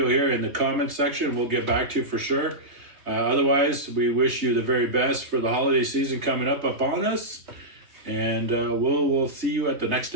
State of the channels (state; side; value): late; left; 3.3 ms